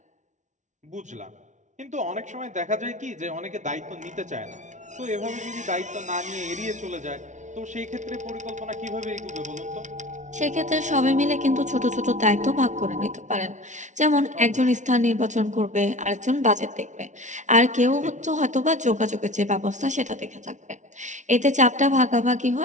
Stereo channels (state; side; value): late; left; 0.36 ms